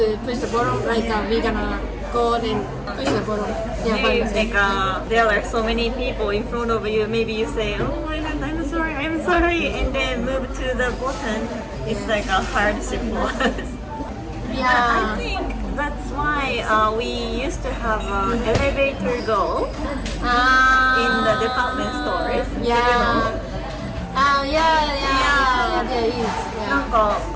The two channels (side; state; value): both; identical; correlation 1.00